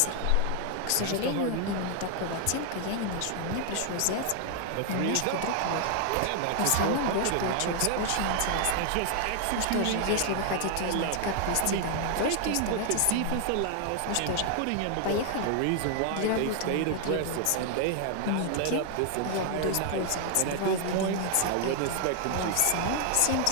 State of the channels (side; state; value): both; different; correlation 0.00